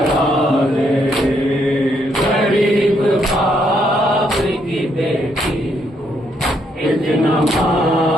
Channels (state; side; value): normal; both; correlation 0.74